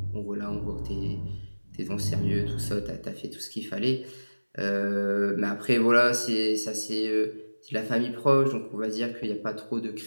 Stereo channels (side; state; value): both; inverted; correlation -1.00